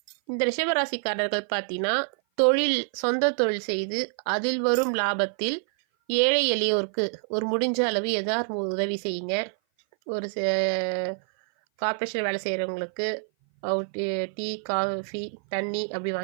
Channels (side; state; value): left; silent; 57 dB below the other